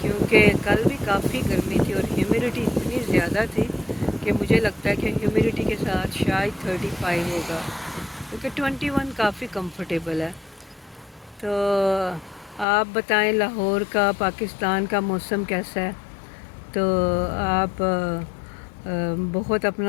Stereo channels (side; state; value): right; drops out; at 12.7 s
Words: کیونکہ کل بھی کافی گرمی تھی اور ہیومیڈیٹی اتنی زیادہ تھی کہ مجھے لگتا ہے کہ ہیومیڈیٹی کے ساتھ شاید 35 ہوگا، کیونکہ 21 کافی کمفرٹیبل ہے. تو آپ بتائیں لاہور کا، پاکستان کا موسم کیسا ہے؟ تو آپ بہت